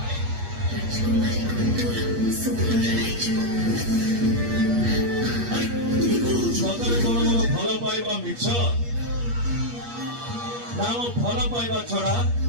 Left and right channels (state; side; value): late; left; 8.4 ms